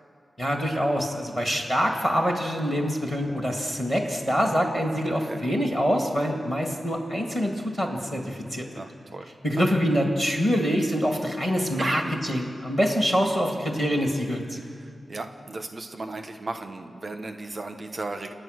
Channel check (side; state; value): both; normal; correlation 0.91